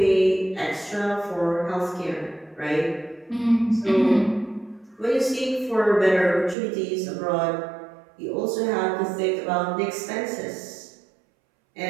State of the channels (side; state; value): left; drops out; at 6.6 s